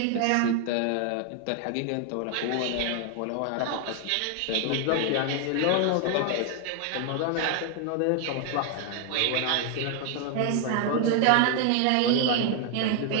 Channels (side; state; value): both; different; correlation 0.00